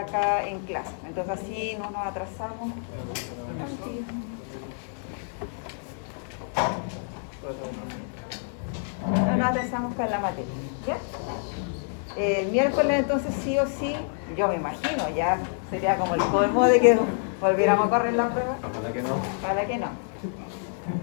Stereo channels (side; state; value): right; silent; 60 dB below the other